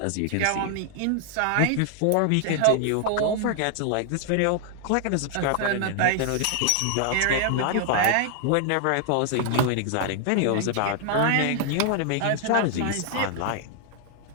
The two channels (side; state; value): both; different; correlation 0.00